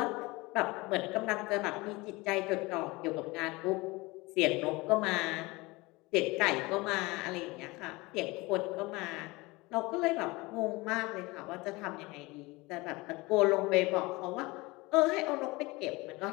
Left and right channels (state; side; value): quieter; right; 23.0 dB